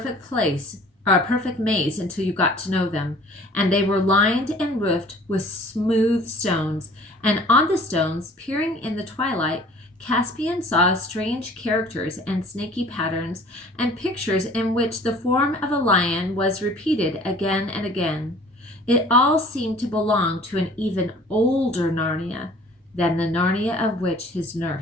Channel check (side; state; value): both; normal; correlation 0.50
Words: maze until you got to know them, and they were lined and roofed with smooth stones, and on the stones, peering in the twilight, Caspian saw strange characters and snaky patterns and pictures in which the form of a lion was repeated again and again. It all seemed to belong to an even older Narnia than the Narnia of which his